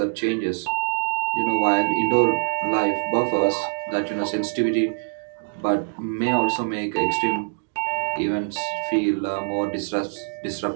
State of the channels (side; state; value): left; silent; digital silence